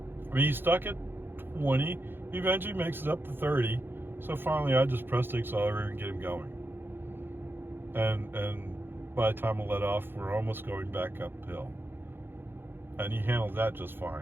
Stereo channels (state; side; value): late; left; 0.10 ms